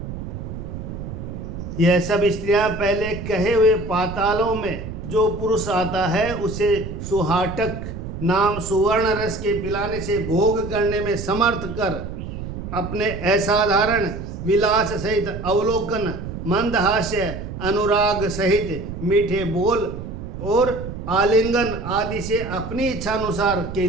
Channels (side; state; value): right; noise; rumble, 8 dB below the sound